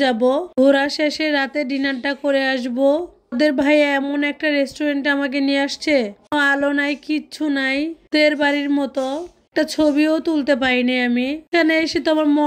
যাব, ঘোরা শেষে রাতে ডিনারটা করে আসবো। ওদের ভাই এমন একটা রেস্টুরেন্টে আমাকে নিয়ে আসছে, আলো নাই, কিচ্ছু নাই, তের বাড়ির মতো। একটা ছবিও তুলতে পাইনি আমি। এখানে এসে তো আমার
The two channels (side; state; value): both; identical; correlation 1.00